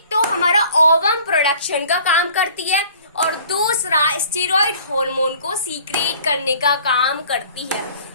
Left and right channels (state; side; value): inverted; both; correlation -0.51